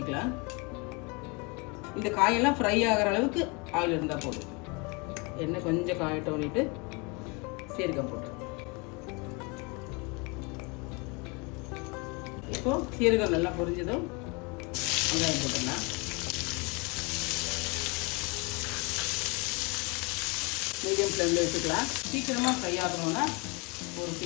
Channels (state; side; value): quieter; right; 29.7 dB